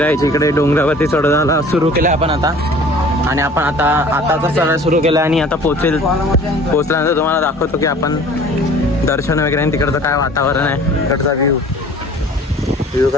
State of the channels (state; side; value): normal; both; correlation 0.48